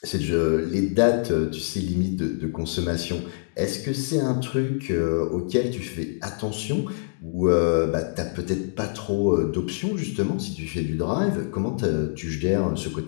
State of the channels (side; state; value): right; silent; digital silence